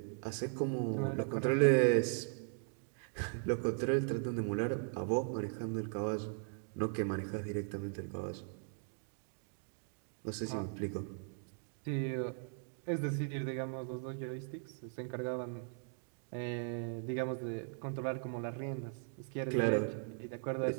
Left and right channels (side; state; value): left; silent; digital silence